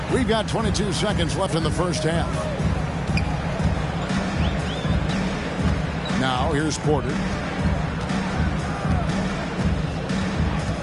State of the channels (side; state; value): both; identical; correlation 1.00